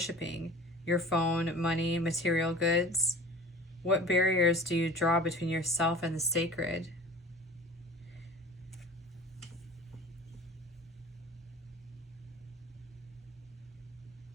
Your phone, money, material goods? What barriers do you draw between yourself and the sacred?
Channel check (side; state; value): both; normal; correlation 0.41